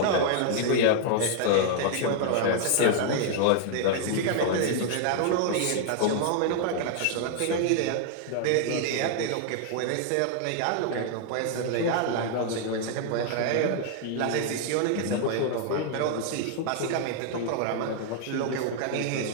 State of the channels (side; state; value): both; different; correlation 0.00